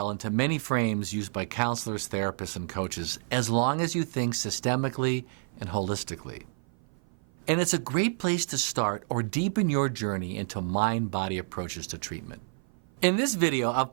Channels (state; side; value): silent; left; 55 dB below the other